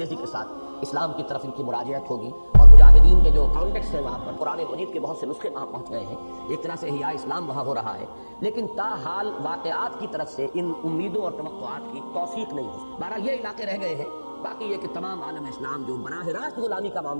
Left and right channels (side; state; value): both; inverted; correlation -1.00